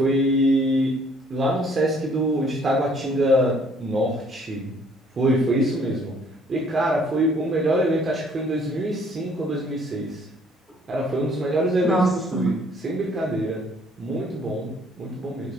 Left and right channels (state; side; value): normal; both; correlation 0.61